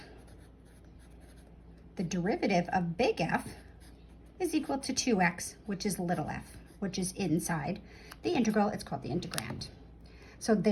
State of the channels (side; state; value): both; identical; correlation 1.00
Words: the derivative of big F is equal to 2x, which is little f, which is inside the integral. It's called the integrand. So